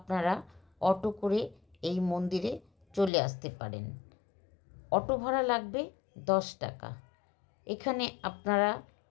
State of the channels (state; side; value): drops out; right; at 3.1 s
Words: অটো করে এই মন্দিরে চলে আসতে পারেন। অটো ভাড়া লাগবে 10 টাকা। এখানে আপনারা